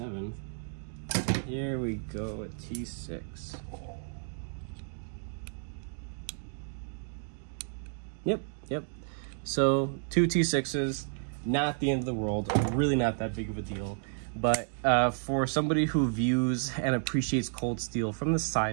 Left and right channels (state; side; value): silent; left; digital silence